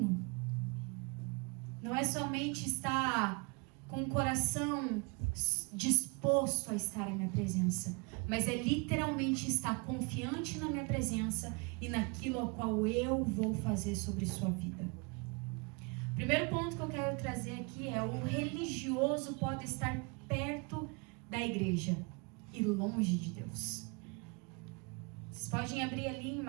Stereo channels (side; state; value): left; quieter; 31.4 dB